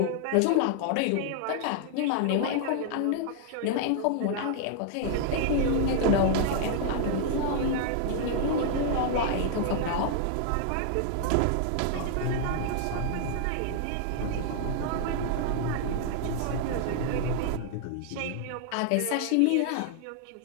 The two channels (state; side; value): different; both; correlation 0.00